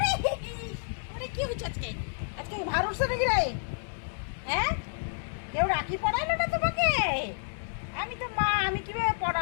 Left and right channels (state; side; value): silent; right; 58 dB below the other